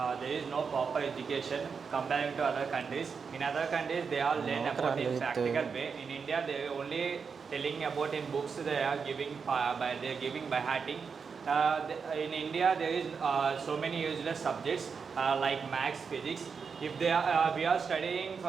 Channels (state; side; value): quieter; left; 5.7 dB